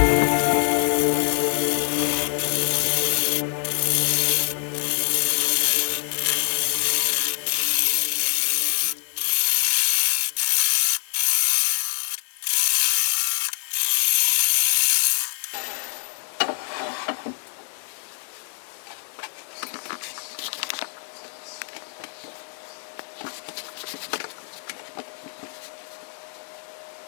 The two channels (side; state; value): right; silent; 58 dB below the other